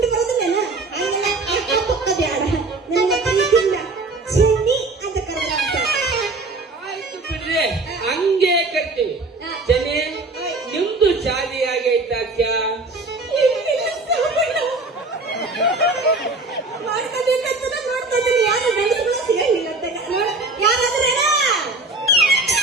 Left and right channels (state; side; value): quieter; left; 3.3 dB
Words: ಬರೋದಿಲ್ಲೇನ ಹಂಗೆಲ್ಲ ಅಕ್ಕ ಬ್ಯಾಡ ನನಗೆ ಪ್ರೀತಿಯಿಂದ ಚಿನ್ನಿ ಅಂತ ಕರೆದ್ರ ಅಂತ. ಆಯ್ತು ಬಿಡ್ರಿ, ಹಂಗೆ ಕರ್ತೀವಿ. ಜನೇ ನಿಮ್ದು ಶಾದಿ ಆಗೈತಾಕ್ಯ? ಮಾಡ್ಕೋಬೇಕಂತ ನೋಡ್ತಾ ಇದ್ದೀನಿ. ಯಾರು ಗಂಡಸರು ಸಿಗಂಗಿಲ್ಲ ಅಂತ ಯಾರಾದ್ರೆ